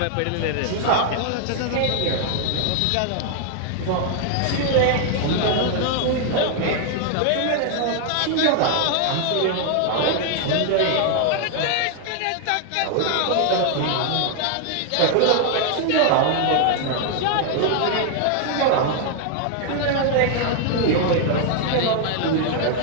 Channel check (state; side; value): different; both; correlation 0.00